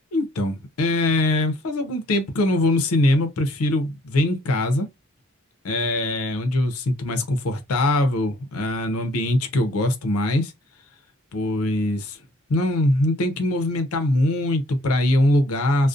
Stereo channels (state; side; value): normal; both; correlation 0.61